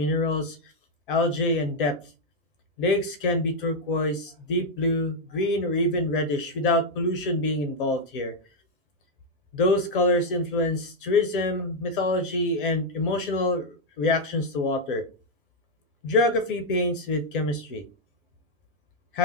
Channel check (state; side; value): normal; both; correlation 0.00